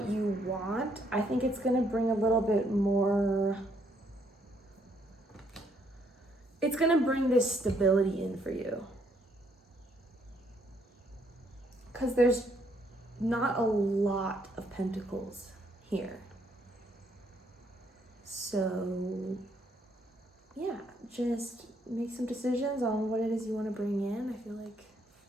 you want, I think it's going to bring a little bit more. It's going to bring this stability in for you. Because there's not a lot of pentacles here. So, yeah, just make some decisions on what it is you want to bring in. I feel like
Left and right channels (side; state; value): both; normal; correlation 0.70